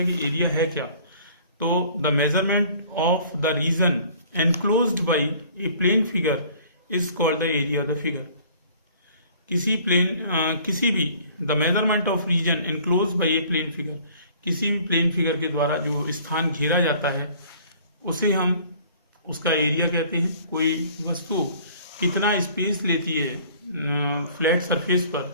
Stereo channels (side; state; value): both; inverted; correlation -0.53